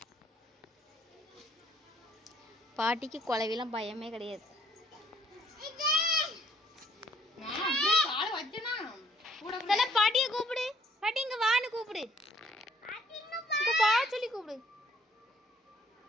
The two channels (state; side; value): normal; both; correlation 0.63